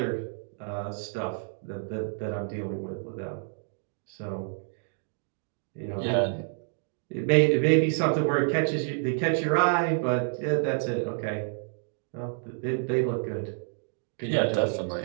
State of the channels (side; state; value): left; silent; digital silence